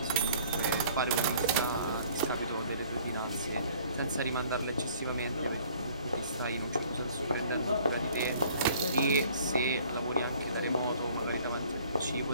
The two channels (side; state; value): both; inverted; correlation -0.55